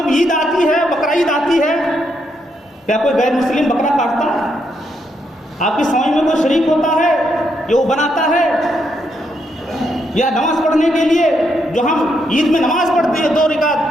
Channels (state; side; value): normal; both; correlation 0.78